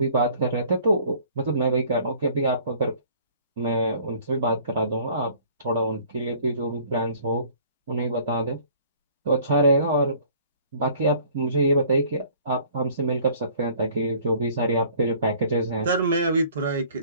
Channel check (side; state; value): both; inverted; correlation -0.54